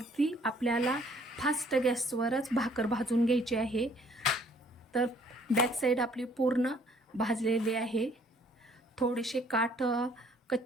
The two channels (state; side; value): normal; both; correlation 0.60